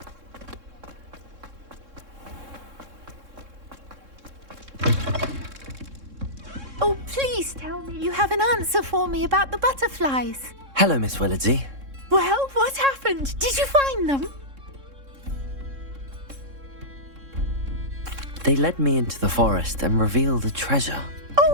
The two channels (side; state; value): left; late; 3.6 ms